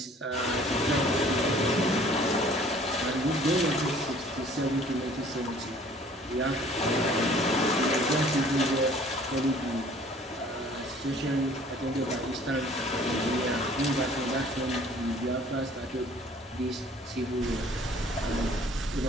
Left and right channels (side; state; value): both; normal; correlation 0.53